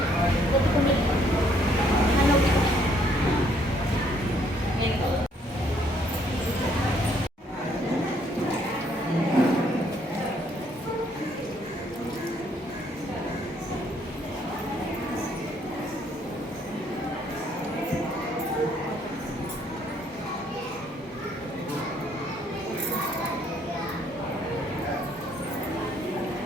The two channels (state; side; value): normal; both; correlation 0.67